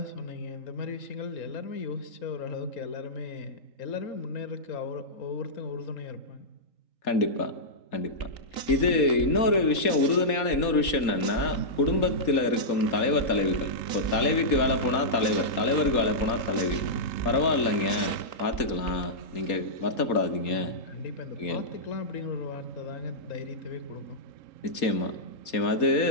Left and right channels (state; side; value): late; right; 4.2 ms